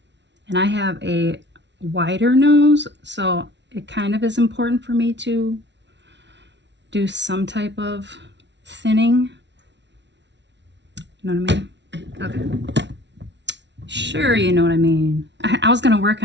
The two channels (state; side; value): late; left; 0.51 ms